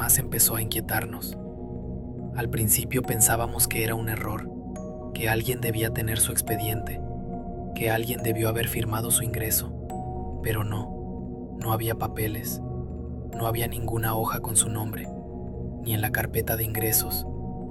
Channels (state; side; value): identical; both; correlation 1.00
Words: empezó a inquietarnos. Al principio pensábamos que era un error, que alguien debía tener su expediente, que alguien debió haber firmado su ingreso, pero no había papeles, no había ninguna hoja con su nombre, ni en la carpeta de ingresos,